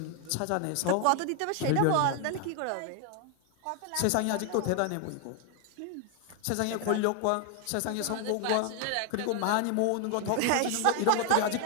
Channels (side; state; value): both; different; correlation 0.00